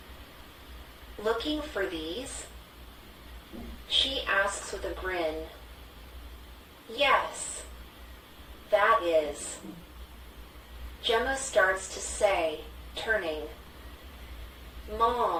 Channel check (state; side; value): identical; both; correlation 1.00